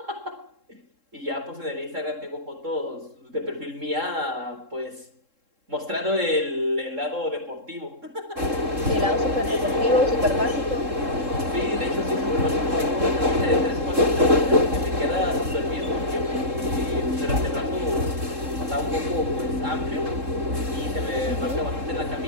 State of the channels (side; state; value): left; late; 3.7 ms